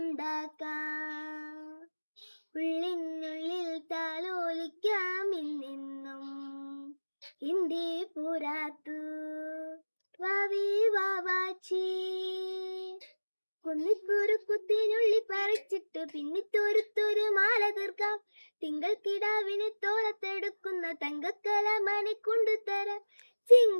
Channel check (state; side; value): inverted; both; correlation -1.00